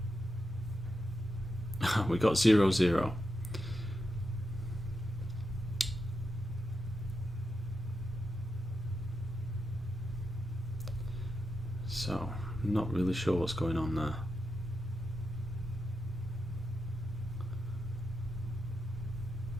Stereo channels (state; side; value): normal; both; correlation 0.87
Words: We got 0, 0. So, I'm not really sure what's going on there.